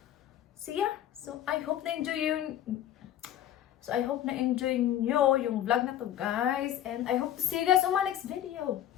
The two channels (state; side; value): quieter; right; 11.5 dB